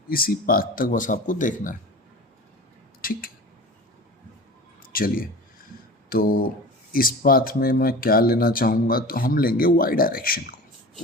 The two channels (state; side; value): normal; both; correlation 0.35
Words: इसी पाथ तक बस आपको देखना है। ठीक है, चलिए तो इस पाथ में मैं क्या लेना चाहूँगा, तो हम लेंगे वाई डायरेक्शन को,